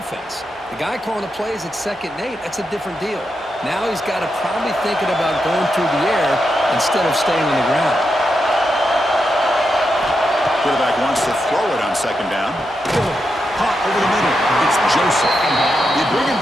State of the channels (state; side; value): normal; both; correlation 0.85